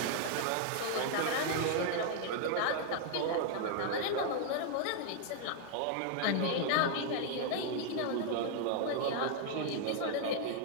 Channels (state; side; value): different; both; correlation 0.00